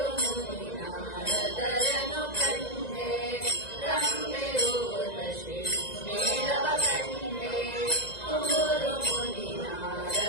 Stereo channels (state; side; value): late; right; 1.9 ms